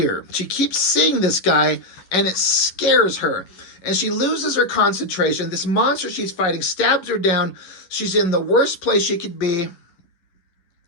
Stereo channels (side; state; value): right; late; 11 ms